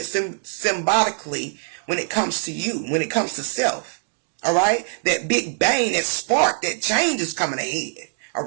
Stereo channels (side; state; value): left; silent; 63 dB below the other